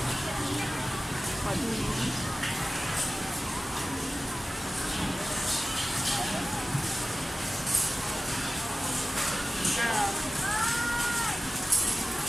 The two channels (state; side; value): normal; both; correlation 0.96